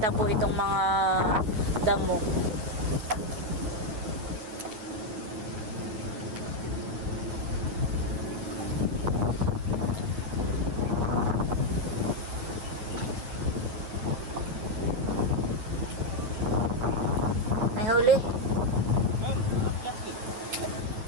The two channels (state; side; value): late; left; 9.4 ms